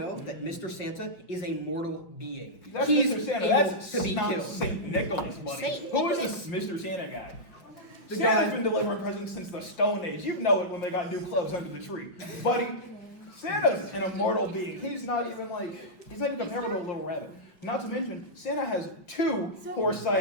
that Mr. Santa is a mortal being. That's He's Mr. Santa. able That's to be not killed. Saint Nicholas, buddy. Saint Who is Nicholas. this Mr. Santa guy? The Santa's guy- been delivering presents since the Stone Age. You know it when they got new clothes under the tree. Buddy, Santa's an immortal being. He's not even comparable to a little rabbit. Not to mention, Santa has 2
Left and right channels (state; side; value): late; right; 5.3 ms